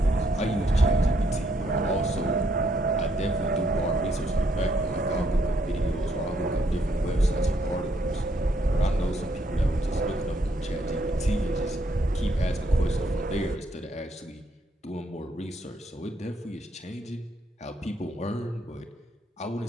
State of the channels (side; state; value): both; normal; correlation 0.72